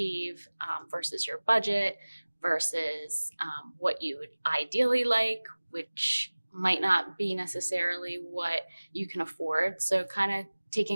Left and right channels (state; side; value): inverted; both; correlation -1.00